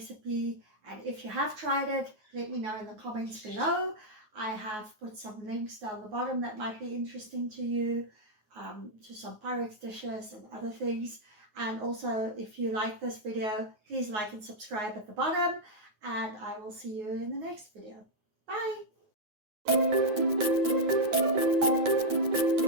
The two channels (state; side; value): late; left; 9.5 ms